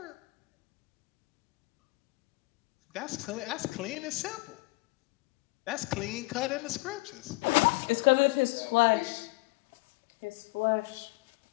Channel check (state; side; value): quieter; right; 24.8 dB